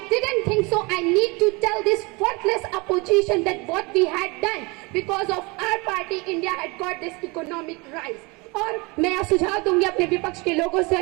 didn't think so. I need to tell this worthless opposition that what we had done because of our party, India had got this economic rise. और मैं यह सुझाव दूंगी अपने विपक्ष के लोगों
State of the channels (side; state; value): left; quieter; 26.9 dB